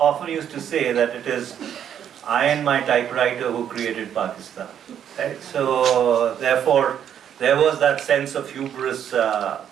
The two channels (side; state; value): left; quieter; 9.3 dB